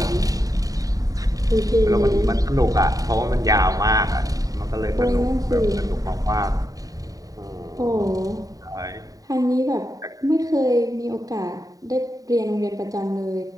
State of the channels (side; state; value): left; late; 0.17 ms